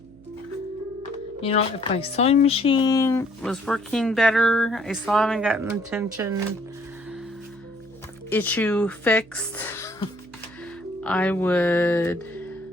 You know, if my sewing machine was working better, I still haven't gotten the tension issue fixed, I would...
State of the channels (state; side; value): noise; right; hum, 25 dB below the sound